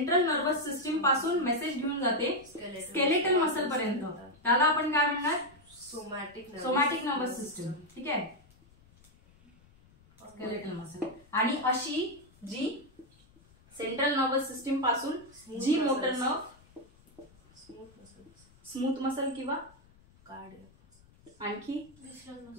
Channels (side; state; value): left; noise; rumble, 28 dB below the sound